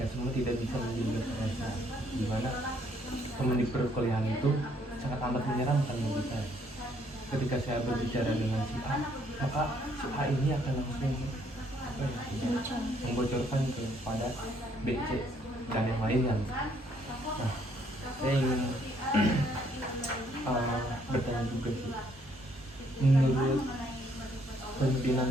semua tidak bisa menjaga perasaan. Dimana teman di perkuliahan itu sangat amat menyeramkan bagi saya. Ketika saya berbicara dengan si A, maka si A ini akan langsung membocorkan kepada B, C, dan yang lainnya. Nah, saya ingin bertanya juga sih, menurut pimpinan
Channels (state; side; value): normal; both; correlation 0.67